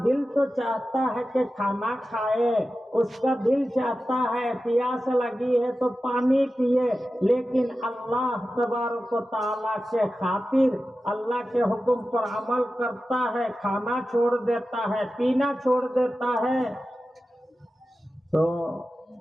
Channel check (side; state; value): both; normal; correlation 0.93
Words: دل تو چاہتا ہے کہ کھانا کھائے، اس کا دل چاہتا ہے پیاس لگی ہے تو پانی پیے، لیکن اللہ تبارک و تعالیٰ کے خاطر اللہ کے حکم پر عمل کرتا ہے، کھانا چھوڑ دیتا ہے، پینا چھوڑ دیتا ہے. تو